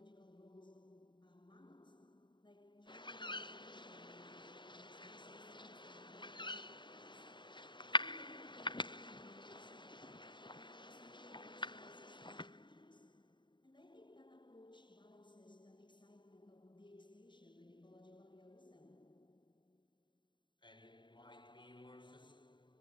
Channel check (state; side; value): late; right; 0.23 ms